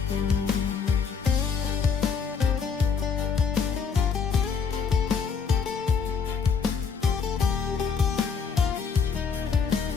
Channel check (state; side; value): quieter; right; 6.0 dB